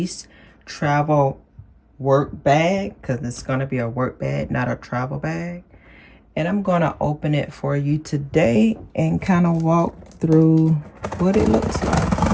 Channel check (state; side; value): identical; both; correlation 1.00